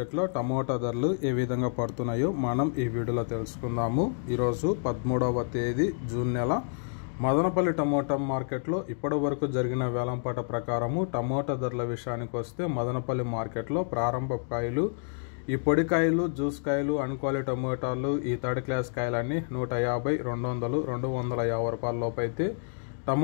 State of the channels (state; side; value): silent; right; digital silence